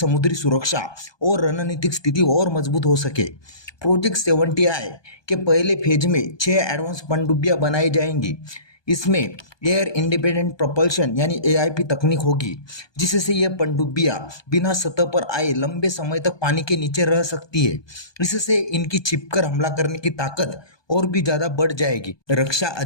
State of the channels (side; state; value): right; late; 1.2 ms